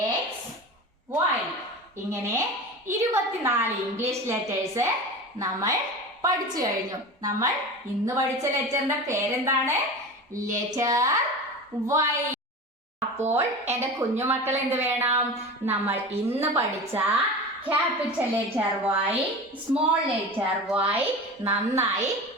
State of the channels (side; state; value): both; normal; correlation 0.31